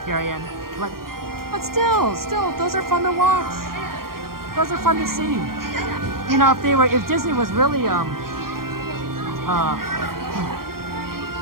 But still, those are fun to watch. Those are fun to see. If Disney was really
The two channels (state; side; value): late; left; 0.92 ms